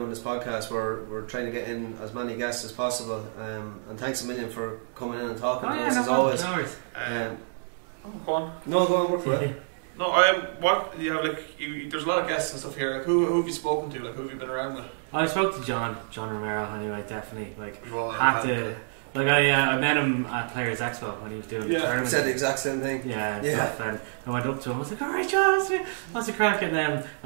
this podcast. We're trying to get in as many guests as possible. And thanks a million for coming in and talking to us as always. Go on. No, go on, work for it. No, what you have there's a lot of guests and stuff here. Like, who have you spoken to? Like, who have you been around with? I spoke to John Romero anyway. Definitely, like I met him at Players Expo when he was doing the tournament. Said the exact same thing. Stuff, and I went up to him. I was like, "All right, John, what's the crack?" And then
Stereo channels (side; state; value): left; silent; digital silence